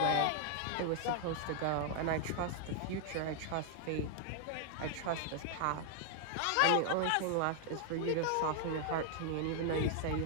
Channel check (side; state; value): both; different; correlation 0.00